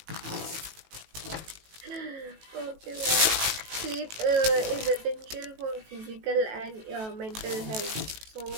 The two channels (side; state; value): left; late; 18 ms